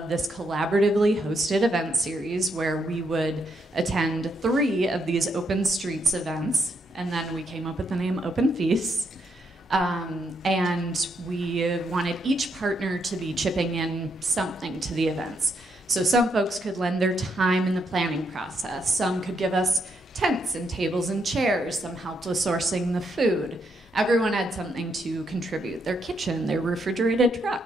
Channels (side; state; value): both; normal; correlation 0.77